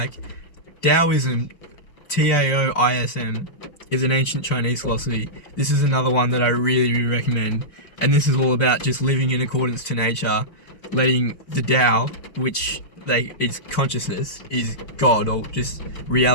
Taoism, Taoism, is an ancient Chinese philosophy. This is another one that I really, really recommend. And this is all about just living in accordance to nature, letting the Tao, which it's consciousness, is God, or just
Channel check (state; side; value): late; right; 5.6 ms